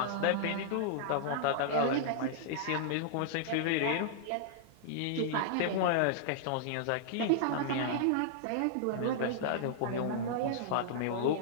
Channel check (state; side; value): different; both; correlation -0.02